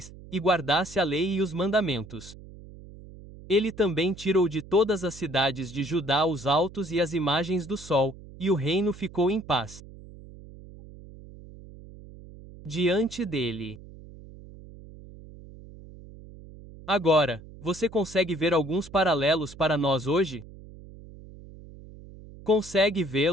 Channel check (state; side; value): noise; right; hum, 18 dB below the sound